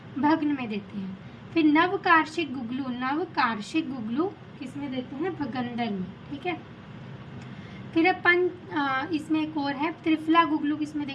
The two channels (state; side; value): identical; both; correlation 1.00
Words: भग्न में देते हैं। फिर नवकार्षिक गुगलू, नवकार्षिक गुगलू किसमें देते हैं, भगंदर में, ठीक है। फिर अब इसमें एक और है त्रिफला गुगलू, किसमें